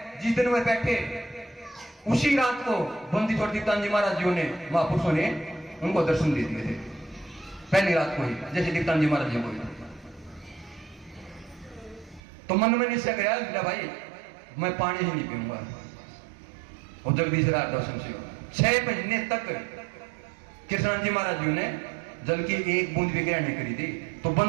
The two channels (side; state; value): left; drops out; at 12.2 s